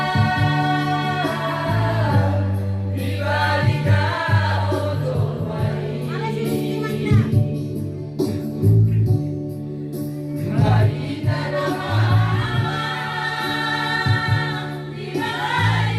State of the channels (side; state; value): both; identical; correlation 1.00